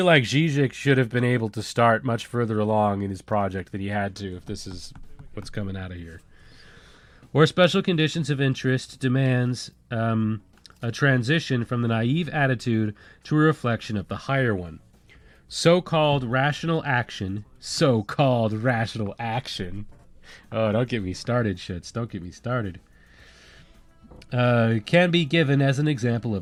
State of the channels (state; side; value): identical; both; correlation 1.00